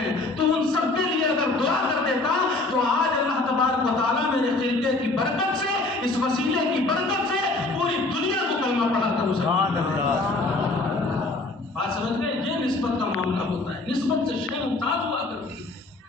تو ان سب کے لیے اگر دعا کر دیتا تو آج اللہ تبارک و تعالیٰ میرے خلیفے کی برکت سے، اس وسیلے کی برکت سے پوری دنیا کو کلمہ پڑھا کر سبحان اللہ. بات سمجھ گئے؟ یہ نسبت کا معاملہ ہوتا ہے. نسبت سے شے ممتاز ہوا کرتی ہے.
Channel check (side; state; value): right; quieter; 3.1 dB